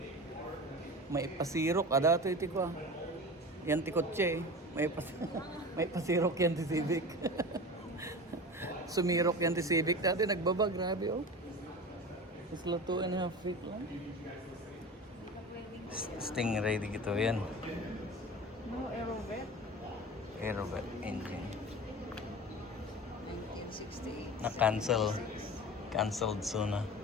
May pasirok. Dato iti ko ah. Yan ti kotse eh. May pasirok yan ti Civic. Sumirok yan ti Civic. Dati nagbaba. Grabe oh. It's la 2.5 feet lang. Stingray di gito yan. No, Aerovet. Aerovet engine. 1968. Na-cancel. Cancelled soon na.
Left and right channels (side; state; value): both; normal; correlation 0.32